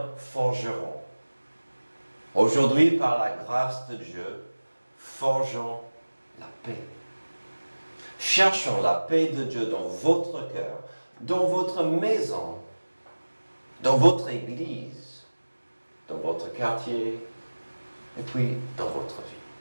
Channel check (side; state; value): both; inverted; correlation -1.00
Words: forgeron. Aujourd'hui, par la grâce de Dieu, forgeons la paix. Cherchons la paix de Dieu dans votre cœur, dans votre maison, dans votre église, dans votre quartier, et puis dans votre